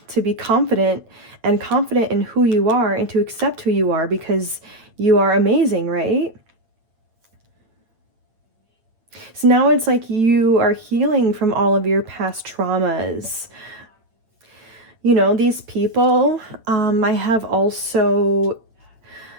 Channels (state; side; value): late; left; 9.0 ms